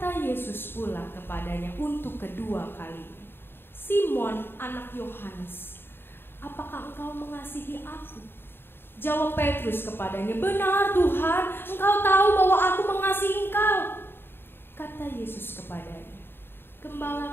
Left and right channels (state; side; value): late; right; 0.11 ms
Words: Yesus pula kepadanya untuk kedua kalinya, "Simon anak Yohanes, apakah engkau mengasihi aku?" Jawab Petrus kepadanya, "Benar Tuhan, Engkau tahu bahwa aku mengasihi Engkau." Kata Yesus kepadanya,